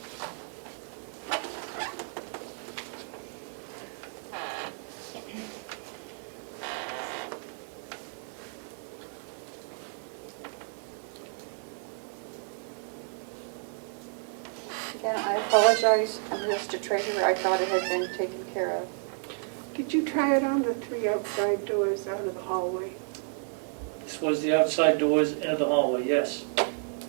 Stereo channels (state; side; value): silent; left; 57 dB below the other